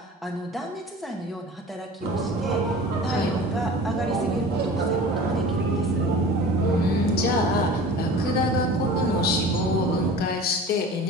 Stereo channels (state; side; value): normal; both; correlation 0.39